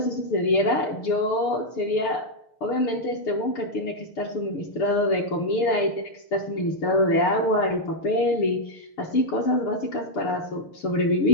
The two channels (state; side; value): late; right; 6.6 ms